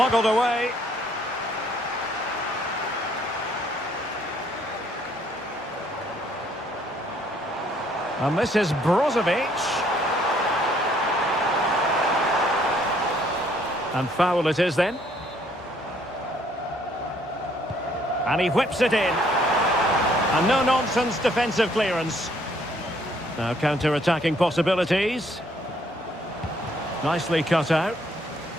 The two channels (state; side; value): normal; both; correlation 0.65